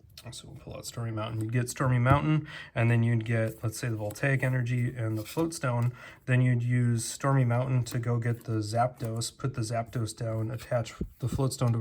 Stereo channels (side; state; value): both; identical; correlation 1.00